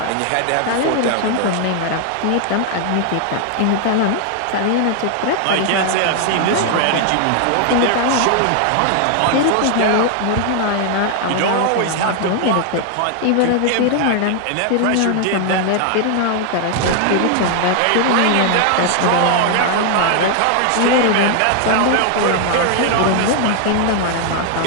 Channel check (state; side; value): different; both; correlation 0.00